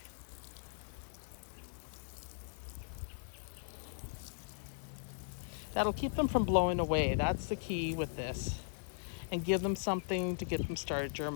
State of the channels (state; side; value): silent; right; digital silence